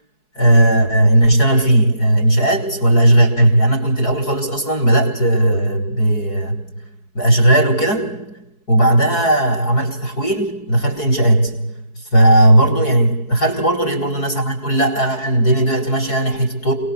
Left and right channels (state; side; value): late; right; 4.7 ms